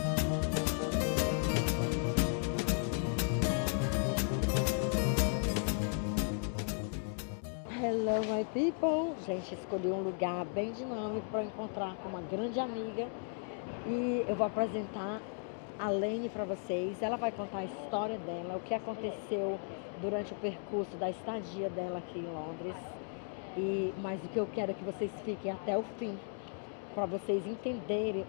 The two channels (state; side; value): silent; right; 54 dB below the other